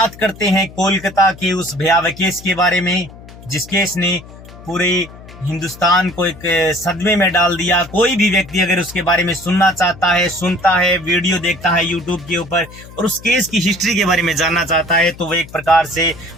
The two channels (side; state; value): left; noise; hum, 18 dB below the sound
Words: करते हैं कोलकाता के उस भयावह केस के बारे में, जिस केस ने पूरे हिंदुस्तान को एक सदमे में डाल दिया। कोई भी व्यक्ति अगर उसके बारे में सुनना चाहता है, सुनता है, वीडियो देखता है यूट्यूब के ऊपर और उस केस की हिस्ट्री के बारे में जानना चाहता है, तो वो एक प्रकार से